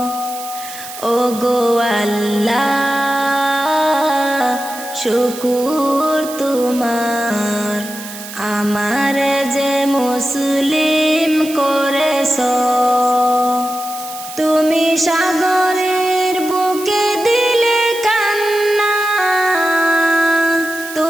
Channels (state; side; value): noise; right; hiss, 12 dB below the sound